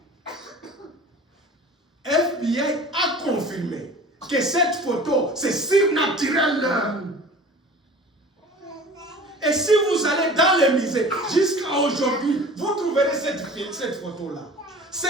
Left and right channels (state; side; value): normal; both; correlation 0.42